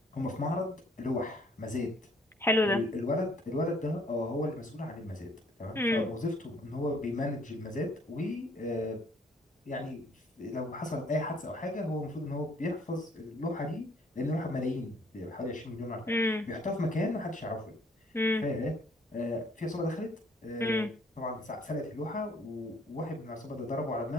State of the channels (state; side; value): normal; both; correlation 0.62